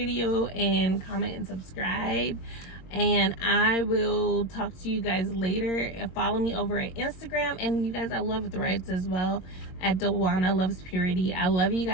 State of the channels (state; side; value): late; right; 22 ms